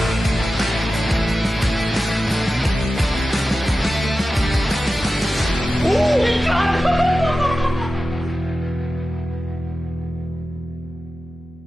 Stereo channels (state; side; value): normal; both; correlation 0.94